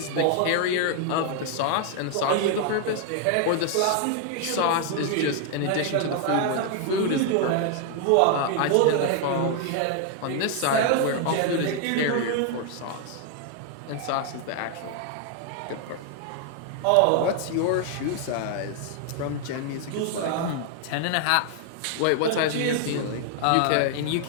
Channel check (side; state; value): both; different; correlation 0.00